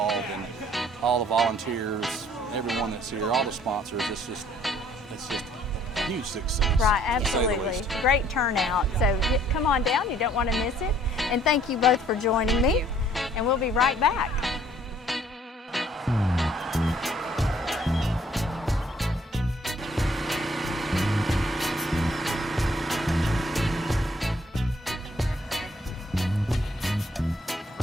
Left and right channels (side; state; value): both; normal; correlation 0.61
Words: and all the volunteers, everyone that's here, all the sponsors. It's just a huge success. Right, absolutely. Great turnout. So come on down. You don't want to miss it. And thank you both for joining me. And we'll be right back.